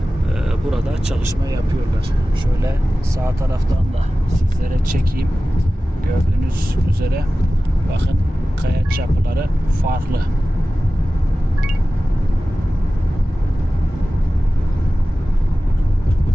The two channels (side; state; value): both; normal; correlation 0.96